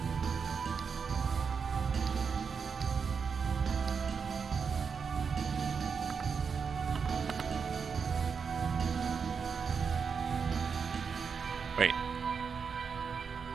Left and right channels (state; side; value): quieter; left; 5.9 dB